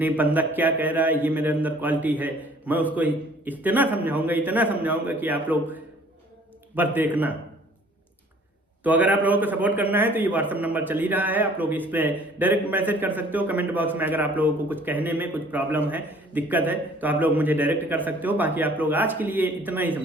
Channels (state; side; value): normal; both; correlation 0.54